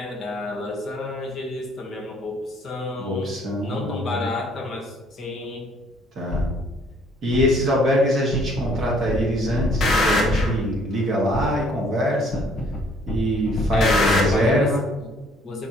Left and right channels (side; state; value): both; normal; correlation 0.61